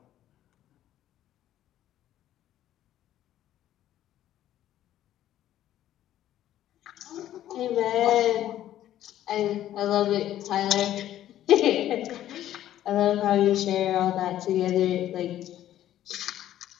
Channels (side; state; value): right; quieter; 12.5 dB